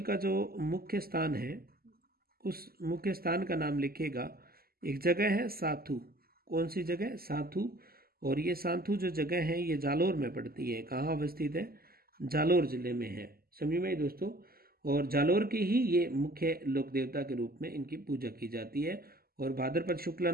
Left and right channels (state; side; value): late; left; 0.44 ms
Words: का जो मुख्य स्थान है, उस मुख्य स्थान का नाम लिखिएगा। एक जगह है साथू। कौन सी जगह? साथू। और ये साथू जो जगह है ये जालोर में पड़ती है। कहाँ अवस्थित है? जालोर जिले में है। समझ में दोस्तों? और जालोर की ही ये मुख्य लोक देवता के रूप में इनकी पूजा की जाती है, और भाद्रपद शुक्ला